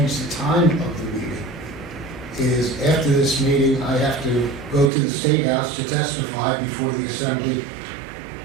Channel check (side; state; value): left; drops out; at 4.9 s